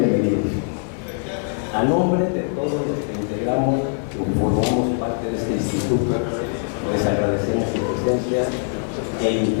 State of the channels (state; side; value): silent; right; digital silence